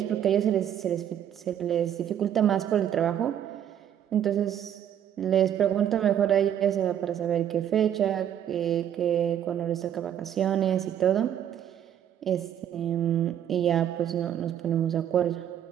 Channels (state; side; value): quieter; left; 10.0 dB